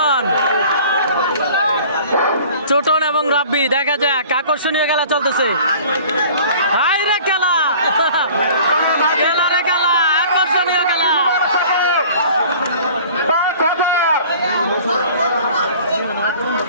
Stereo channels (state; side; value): inverted; both; correlation -0.47